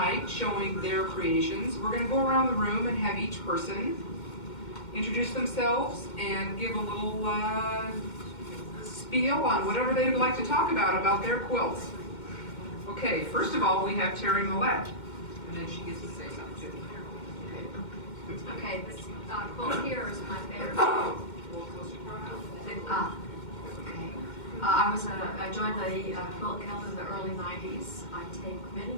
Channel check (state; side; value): late; right; 2.1 ms